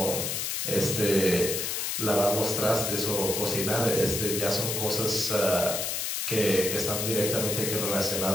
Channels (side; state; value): left; noise; hiss, 1 dB below the sound